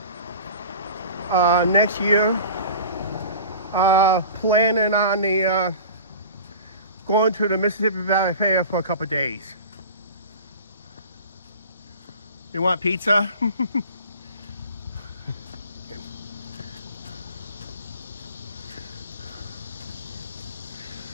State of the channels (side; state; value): both; inverted; correlation -0.38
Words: on the going to the Mississippi Valley Fair for a couple of days. You want pizza?